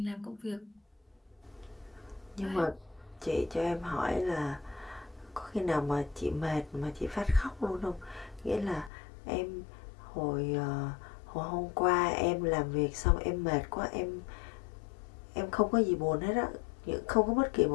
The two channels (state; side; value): drops out; right; at 8.9 s